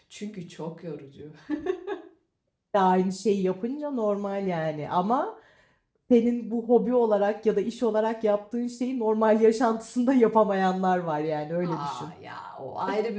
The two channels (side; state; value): both; identical; correlation 1.00